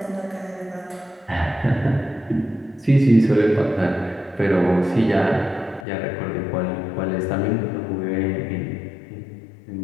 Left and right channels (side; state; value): right; drops out; at 5.9 s